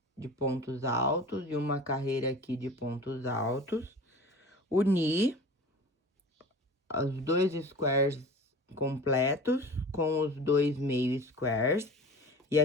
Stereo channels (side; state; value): both; normal; correlation 0.38